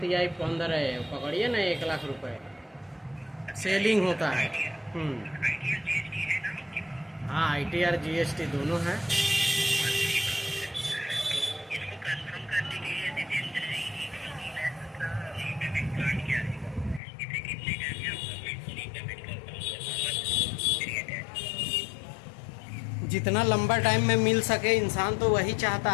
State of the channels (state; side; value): drops out; right; at 17.0 s